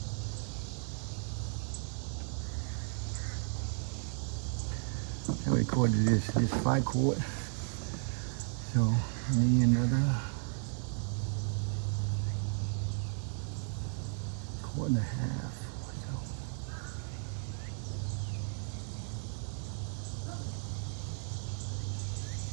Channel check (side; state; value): left; silent; 55 dB below the other